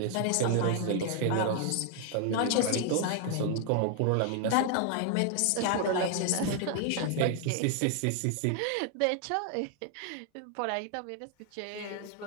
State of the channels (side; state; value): both; different; correlation 0.00